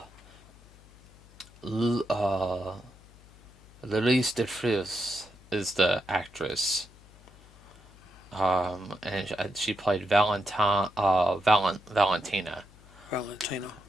Louise DeFries is the actress. And she played Valentina. Valentina.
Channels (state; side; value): noise; left; hum, 24 dB below the sound